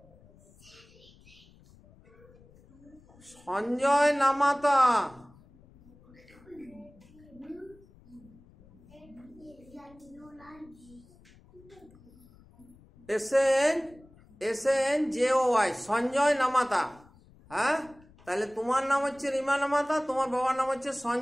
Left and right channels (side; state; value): left; noise; rumble, 26 dB below the sound